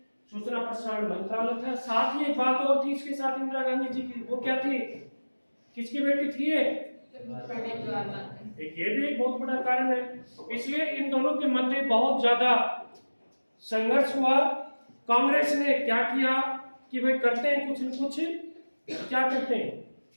सूचना प्रसारण मंत्रालय था। साथ ही एक बात और थी इसके साथ इंदिरा गांधी जी की, वो क्या थी, किसकी बेटी थी ये, ये भी एक बहुत बड़ा कारण है। इसलिए इन दोनों के मध्य बहुत ज्यादा संघर्ष हुआ। कांग्रेस ने क्या किया कि भाई करते हैं कुछ न कुछ, क्या करते हैं,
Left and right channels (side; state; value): both; inverted; correlation -1.00